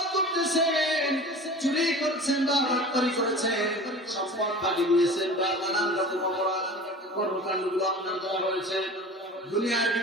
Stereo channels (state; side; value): normal; both; correlation 0.38